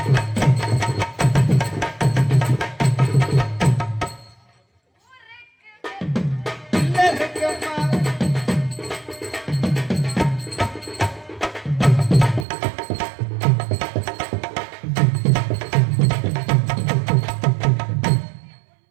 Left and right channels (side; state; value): left; drops out; at 12.5 s